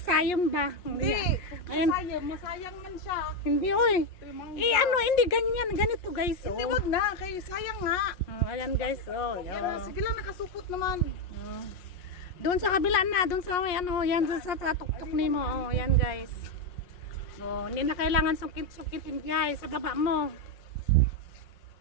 ba? Hindi. Ayan. Masayang man siya. Hindi, oy. Hindi ganyan, ganito, guys. Hindi, wag na, kay sayang nga. Ayan, guys. Sige lang, nakasupot naman. Doon sa kabila na, doon sa may yan sa tuktok nimo. Yan, guys. Hindi na kailangan sukit-sukitin, guys, sa baba mo.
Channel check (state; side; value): late; right; 5.6 ms